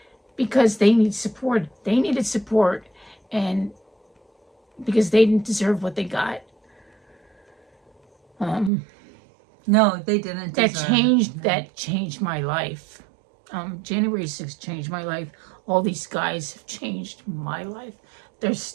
because they need support. They needed support, and because they didn't deserve what they got. No, they didn't. That changed my life. January 6th changed my life. All these guys have changed my life. There's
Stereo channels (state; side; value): drops out; left; at 8.7 s